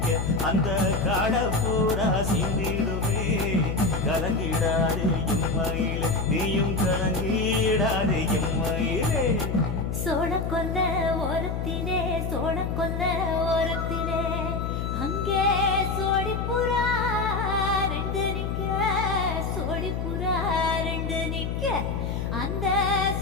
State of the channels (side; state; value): left; noise; hum, 2 dB below the sound